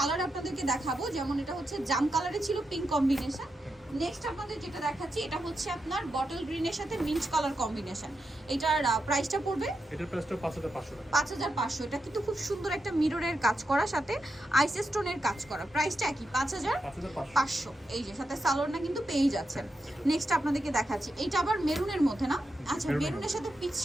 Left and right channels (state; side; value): normal; both; correlation 0.87